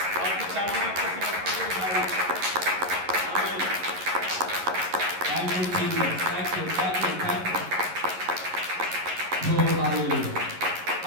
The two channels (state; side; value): late; left; 11 ms